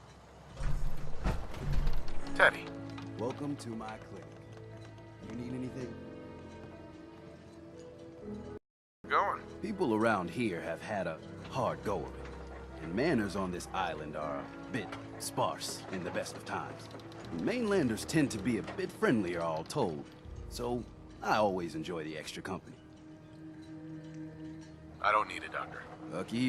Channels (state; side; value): identical; both; correlation 1.00